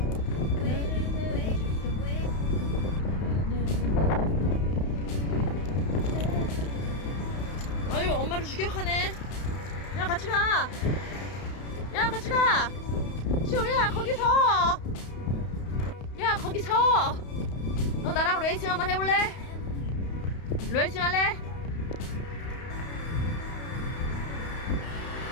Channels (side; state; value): right; late; 32 ms